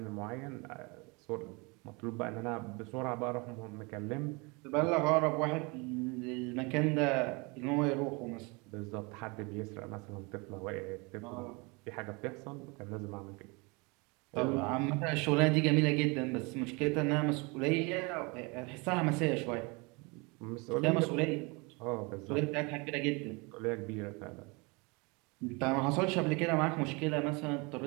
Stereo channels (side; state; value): left; quieter; 28.4 dB